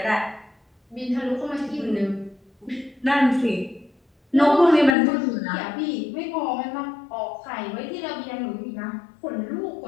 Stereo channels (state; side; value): drops out; right; at 5.0 s